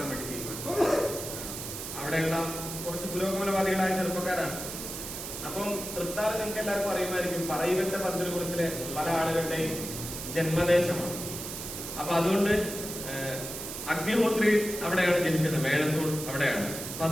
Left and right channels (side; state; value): right; noise; hiss, 7 dB below the sound